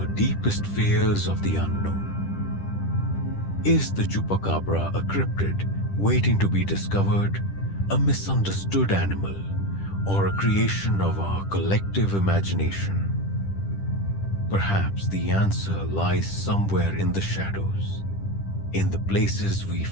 deepest fears of the unknown. Is the chupacabra a cryptid waiting to be discovered, a misunderstood animal, or a creation of our collective imagination? Perhaps the answer lies somewhere in the shadows, in the places we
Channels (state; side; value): late; right; 10 ms